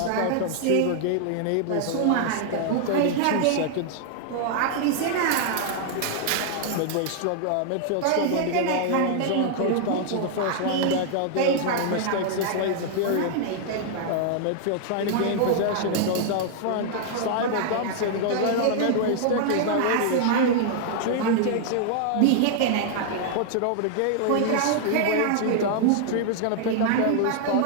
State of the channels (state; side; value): different; both; correlation 0.00